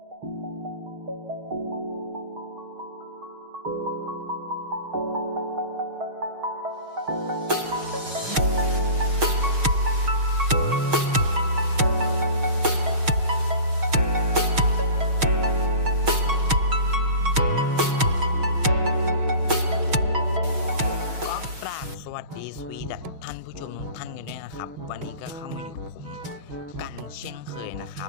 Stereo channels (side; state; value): left; late; 6.3 ms